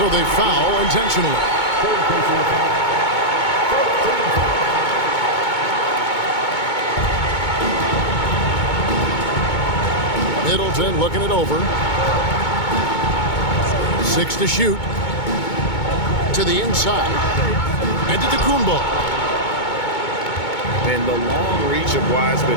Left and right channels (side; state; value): right; late; 2.2 ms